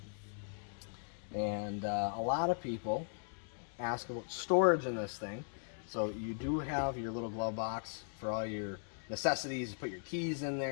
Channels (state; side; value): silent; right; digital silence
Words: And a lot of people ask about storage in this thing. So you do have your little glove box for all your necessities. You put your keys in